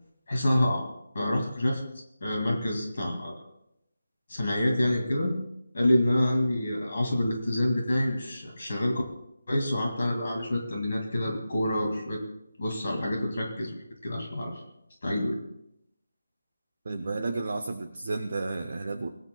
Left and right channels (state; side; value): inverted; both; correlation -0.92